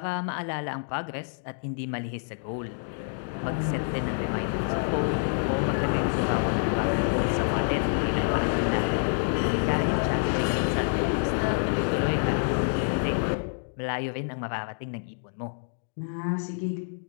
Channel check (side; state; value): right; silent; digital silence